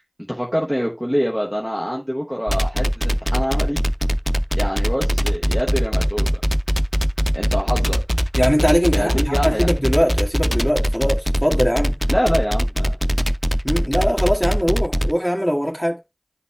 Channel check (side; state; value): both; identical; correlation 1.00